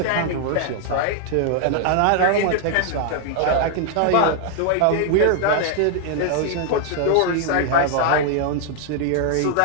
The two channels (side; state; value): both; different; correlation 0.00